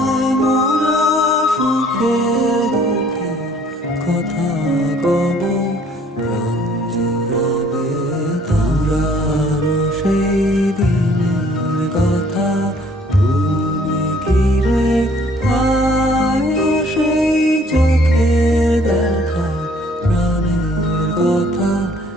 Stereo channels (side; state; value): both; normal; correlation 0.58